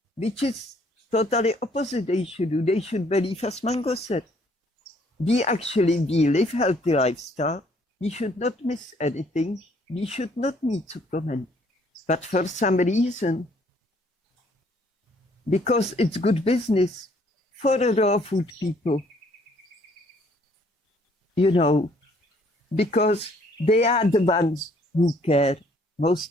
which is totally opposite they should do. They should believe, as Mango said, we live healthy lifestyle. We should not miss anything. We should not need supplement. But for some reason, because it's good business for the raw food people, you know, because they are the ones who care.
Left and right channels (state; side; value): normal; both; correlation 0.63